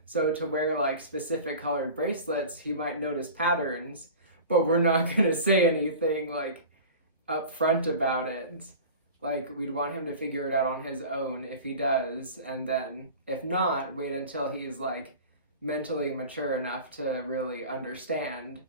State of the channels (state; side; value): inverted; both; correlation -0.37